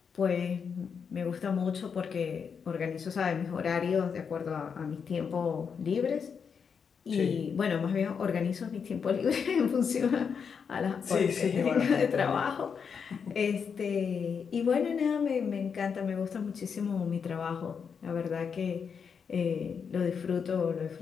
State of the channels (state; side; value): quieter; right; 6.4 dB